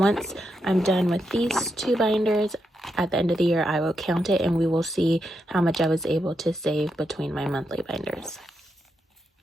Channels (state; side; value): normal; both; correlation 0.83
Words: I'm done with these 2 binders, at the end of the year, I will count it and we will see how much I was able to save between my monthly binders.